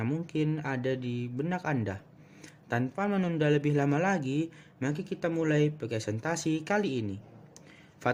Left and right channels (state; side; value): identical; both; correlation 1.00